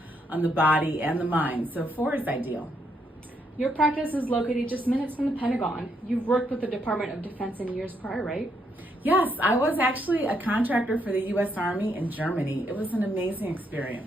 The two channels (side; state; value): both; normal; correlation 0.76